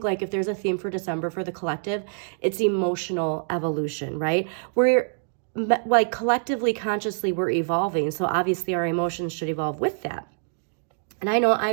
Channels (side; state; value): left; silent; digital silence